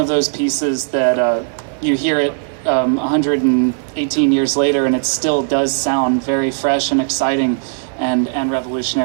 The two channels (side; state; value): left; silent; digital silence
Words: those pieces that you hear it 118 years later, and it still does sound very fresh and exciting and